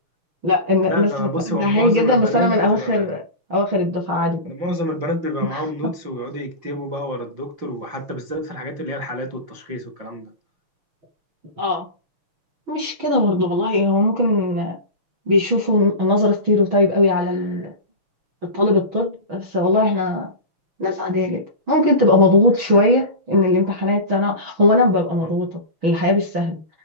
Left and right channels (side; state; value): left; late; 6.3 ms